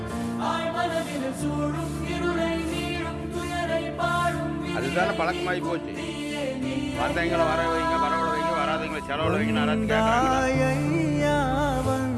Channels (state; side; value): identical; both; correlation 1.00